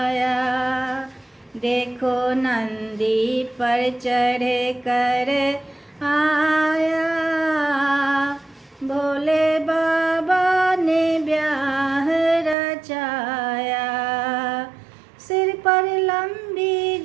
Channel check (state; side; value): drops out; left; at 12.6 s